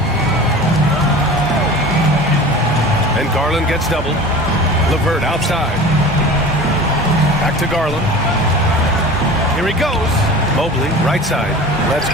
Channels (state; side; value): normal; both; correlation 0.37